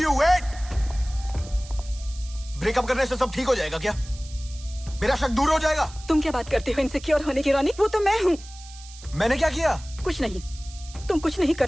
you, wait. Breakup करने से सब ठीक हो जाएगा क्या? मेरा शक दूर हो जाएगा? तुम क्या बात करते हो इनसिक्योर होने की रोनिक? वो तो मैं हूँ। मैंने क्या किया? कुछ नहीं, तुम कुछ नहीं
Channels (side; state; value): right; noise; hiss, 18 dB below the sound